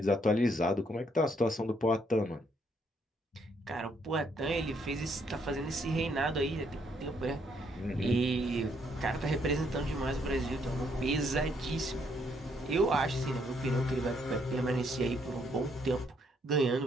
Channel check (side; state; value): both; normal; correlation 0.71